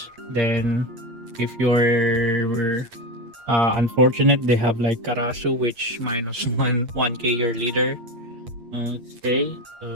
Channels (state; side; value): late; left; 8.6 ms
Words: Then if you're unfortunate, they have like Karasu, which minus 1k your leader. Okay,